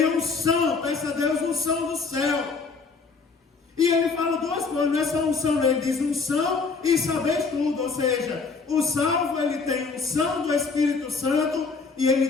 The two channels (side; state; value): right; quieter; 4.7 dB